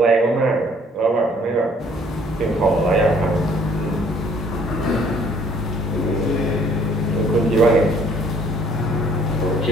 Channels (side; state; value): both; normal; correlation 0.61